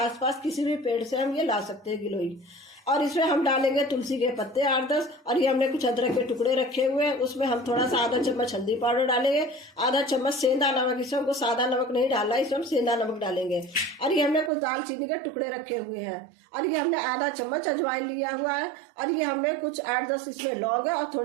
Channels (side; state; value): left; drops out; at 14.5 s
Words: किसी भी पेड़ से हम ये ला सकते हैं गिलोय। और इसमें हम डालेंगे तुलसी के पत्ते 8-10, और ये हमने कुछ अदरक के टुकड़े रखे हुए हैं। उसमें हम थोड़ा सा आधा चम्मच हल्दी पाउडर डालेंगे, आधा चम्मच सेंधा नमक, इसमें हमको सादा नमक नहीं डालना है, इसमें हम सेंधा नमक डालेंगे। और ये हमने कुछ दालचीनी के टुकड़े रखे हुए हैं, और ये हमने आधा चम्मच अजवाइन लिया हुआ है, और ये हमने कुछ 8-10 इसमें लौंग है और